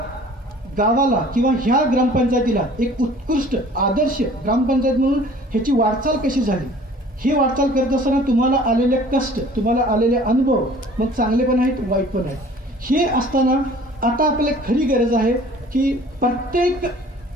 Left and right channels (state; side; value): normal; both; correlation 0.50